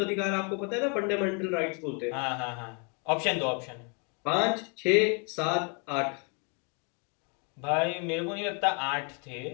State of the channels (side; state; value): right; quieter; 35.0 dB